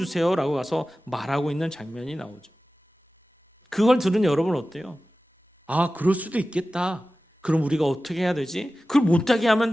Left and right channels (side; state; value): both; normal; correlation 0.95